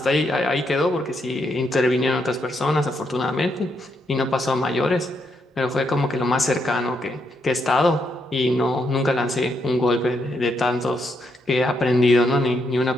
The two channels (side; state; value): both; normal; correlation 0.78